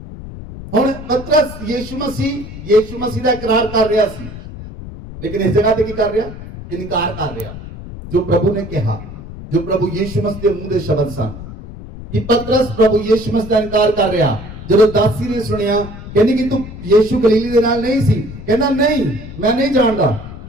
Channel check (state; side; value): noise; left; rumble, 12 dB below the sound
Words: ਹੁਣ ਪਤਰਸ ਯੀਸ਼ੂ ਮਸੀਹ ਦਾ ਇਕਰਾਰ ਕਰ ਰਿਹਾ ਸੀ, ਲੇਕਿਨ ਇਸ ਜਗ੍ਹਾ ਤੇ ਕੀ ਕਰ ਰਿਹਾ? ਇਨਕਾਰ ਕਰ ਰਿਹਾ। ਜੋ ਪ੍ਰਭੂ ਨੇ ਕਿਹਾ, ਜੋ ਪ੍ਰਭੂ ਯੀਸ਼ੂ ਮਸੀਹ ਦੇ ਮੂੰਹ ਦੇ ਸ਼ਬਦ ਸਨ, ਕਿ ਪਤਰਸ ਪ੍ਰਭੂ ਯੀਸ਼ੂ ਮਸੀਹ ਦਾ ਇਨਕਾਰ ਕਰ ਰਿਹਾ। ਜਦੋਂ ਦਾਸੀ ਨੇ ਸੁਣਿਆ, ਕਹਿੰਦੀ ਕਿ ਤੂੰ ਯੀਸ਼ੂ ਗਲੀਲੀ ਦੇ ਨਾਲ ਨਹੀਂ ਸੀ, ਕਹਿੰਦਾ ਨਹੀਂ, ਮੈਂ ਨਹੀਂ ਜਾਣਦਾ।